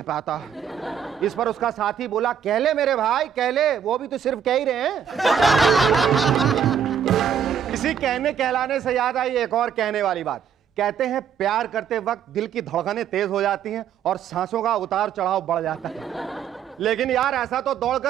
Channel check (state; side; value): quieter; left; 8.0 dB